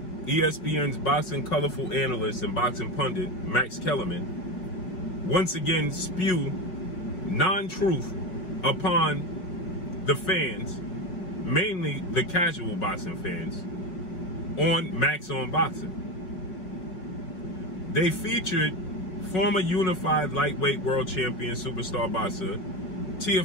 ESPN's boxing colorful analyst and boxing pundit, Max Kellerman, once again spew non-truth upon the fans, mainly the casual boxing fans, on Max on Boxing. They featured former unified lightweight world champion superstar boxer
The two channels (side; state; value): right; late; 5.4 ms